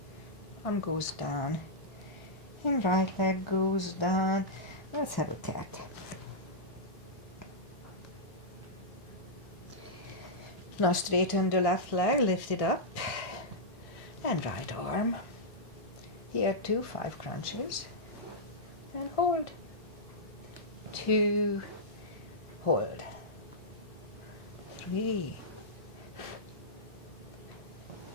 arm goes down, and right leg goes down. Let's have a cat. Now straighten the left leg, lift it up, and right arm. Here too, 5 crunches, and hold. 2, hold. 3,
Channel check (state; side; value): normal; both; correlation -0.10